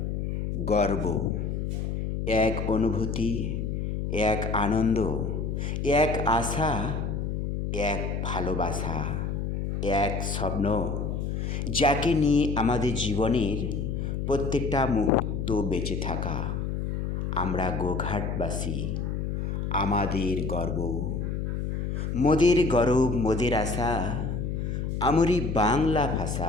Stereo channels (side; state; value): left; noise; hum, 2 dB below the sound